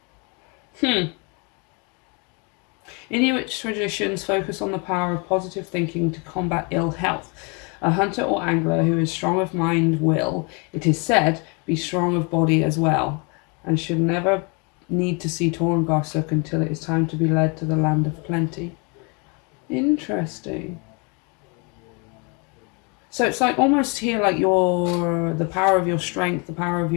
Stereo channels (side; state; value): right; quieter; 32.6 dB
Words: Inuit traditions focus on the power of positive thinking to combat ill health. A hunter or angler who is strong of mind will, it is said, be strong of body as well, and should never need to see Torngarsuk until it is time to be led to the land of plenty. Interesting. So it's like almost here like the power of your strength, the power of